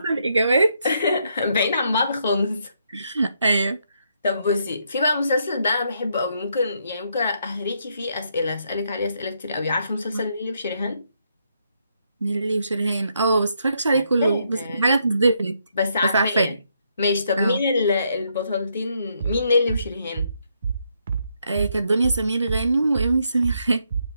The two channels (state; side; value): inverted; both; correlation -0.76